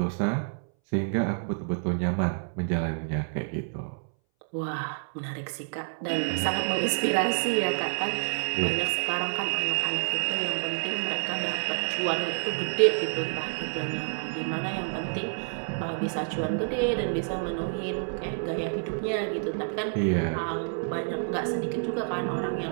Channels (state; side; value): silent; left; 59 dB below the other